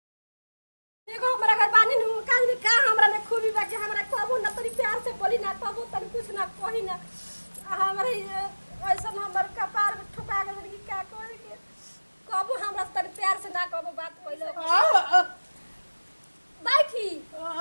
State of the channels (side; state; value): both; inverted; correlation -1.00